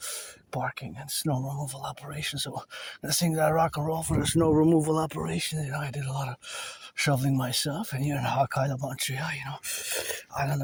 parking and snow removal operations. So the thing that I rock and roll for the snow removal operation, I did a lot of shoveling myself, and here in Hawk Island, Montreal, Island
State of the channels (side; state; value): both; identical; correlation 1.00